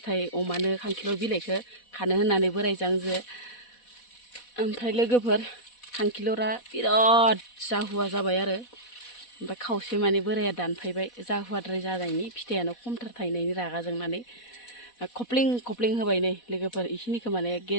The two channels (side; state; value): right; late; 4.1 ms